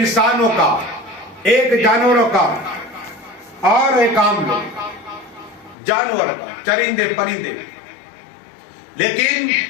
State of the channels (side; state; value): right; drops out; at 5.8 s